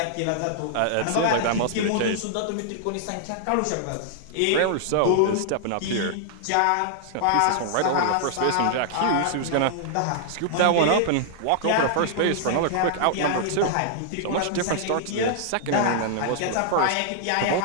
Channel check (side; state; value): both; different; correlation -0.01